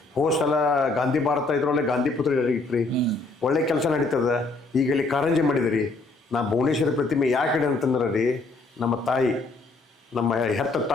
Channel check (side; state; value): right; quieter; 3.4 dB